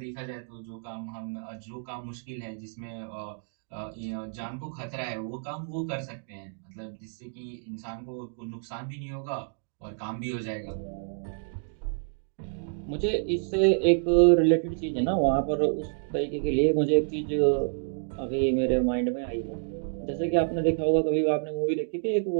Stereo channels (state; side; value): silent; left; digital silence